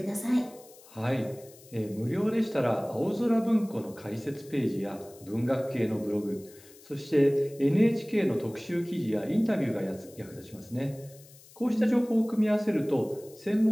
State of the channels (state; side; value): noise; left; hiss, 23 dB below the sound